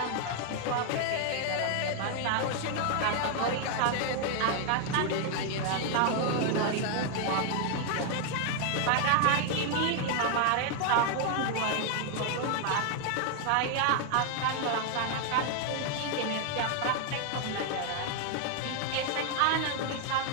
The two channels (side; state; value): both; different; correlation 0.00